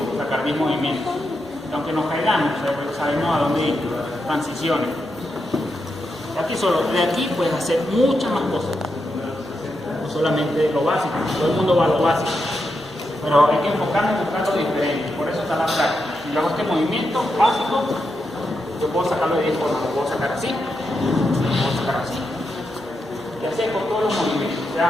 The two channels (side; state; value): both; normal; correlation 0.85